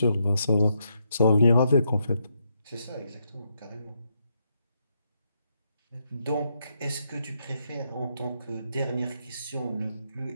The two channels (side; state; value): both; inverted; correlation -0.79